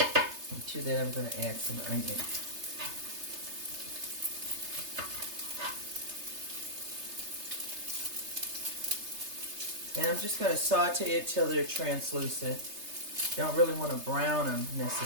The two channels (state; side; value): late; left; 3.3 ms